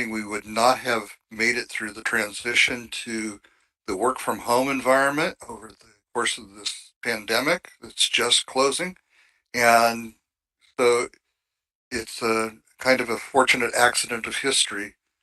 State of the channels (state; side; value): identical; both; correlation 1.00